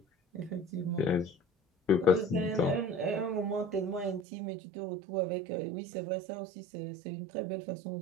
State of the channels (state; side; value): drops out; left; at 4.2 s